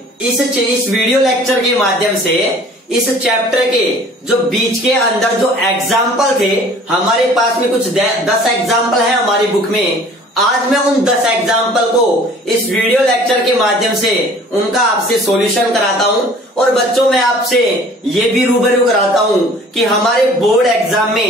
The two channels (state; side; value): normal; both; correlation 0.50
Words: इस वीडियो लेक्चर के माध्यम से इस चैप्टर के जो बीच के अंदर जो एग्जाम्पल थे, हमारे पास में कुछ 10 एग्जाम्पल है हमारी बुक में। आज मैं उन 10 एग्जाम्पल को इस वीडियो लेक्चर के माध्यम से उनका आपसे सॉल्यूशन कराता हूं। और बच्चों, मैं आपसे ये भी रूबरू कराता हूं कि हमारे बोर्ड एग्जाम